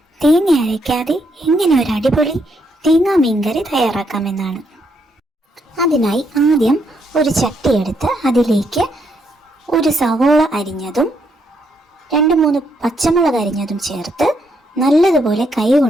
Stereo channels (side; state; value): both; normal; correlation 0.76